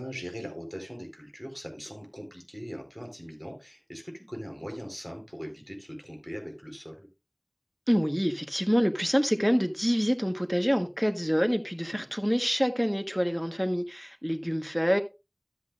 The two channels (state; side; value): identical; both; correlation 1.00